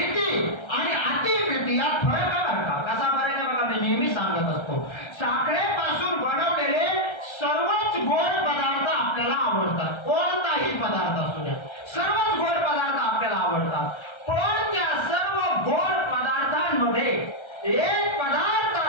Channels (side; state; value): right; late; 1.3 ms